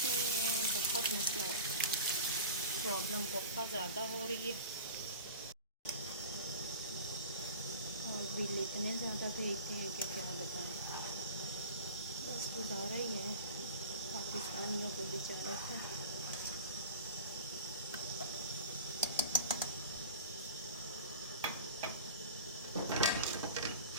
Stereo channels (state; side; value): inverted; both; correlation -0.36